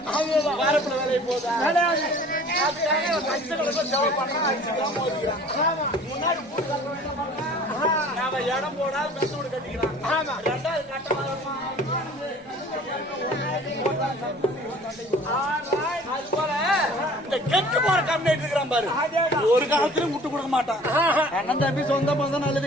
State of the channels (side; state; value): both; normal; correlation 0.48